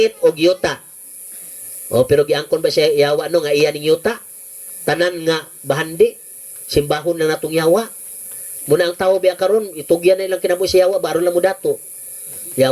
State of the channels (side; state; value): both; identical; correlation 1.00